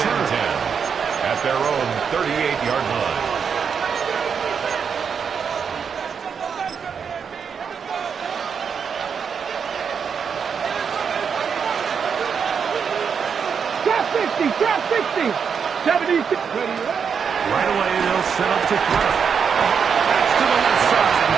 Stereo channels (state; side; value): quieter; left; 6.6 dB